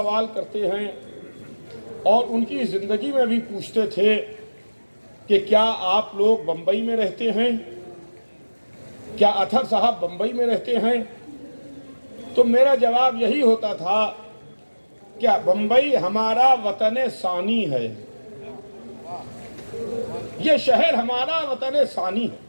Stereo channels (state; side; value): inverted; both; correlation -1.00